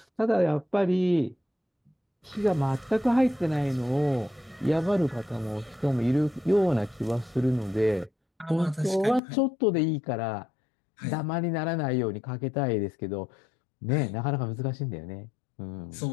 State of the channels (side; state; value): right; drops out; at 9.2 s